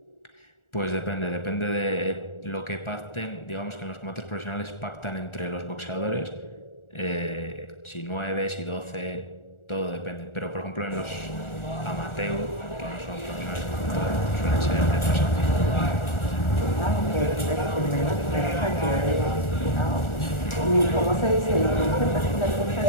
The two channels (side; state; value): right; late; 1.4 ms